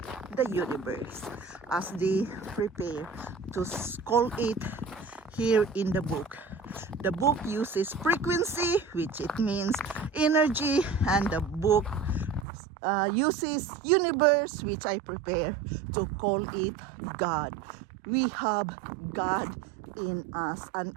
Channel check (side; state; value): left; drops out; at 12.5 s